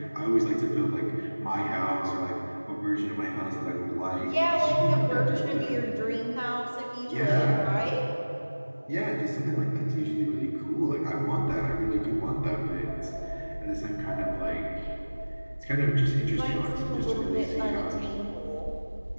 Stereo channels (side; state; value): both; inverted; correlation -1.00